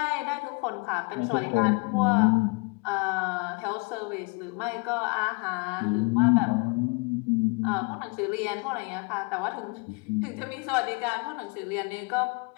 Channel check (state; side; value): quieter; right; 30.6 dB